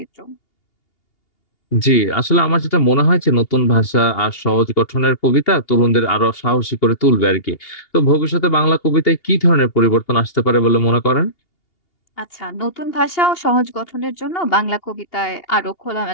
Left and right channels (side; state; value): right; late; 2.8 ms